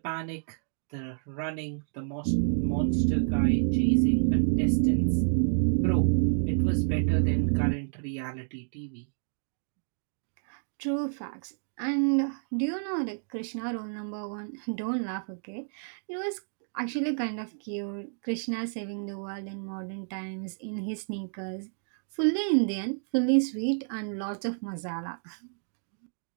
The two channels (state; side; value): silent; left; digital silence